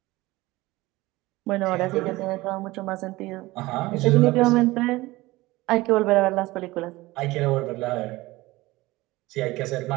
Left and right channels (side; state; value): left; quieter; 19.6 dB